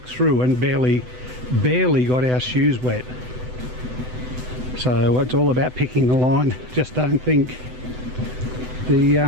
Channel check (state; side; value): late; left; 7.9 ms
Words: through and barely got our shoes wet. So it's all about picking the line. Just don't think the